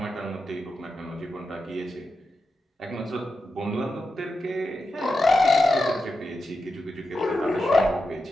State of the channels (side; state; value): both; normal; correlation 0.89